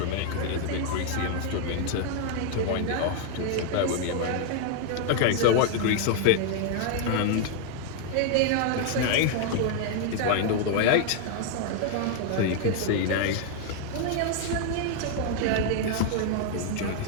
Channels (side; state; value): both; different; correlation 0.00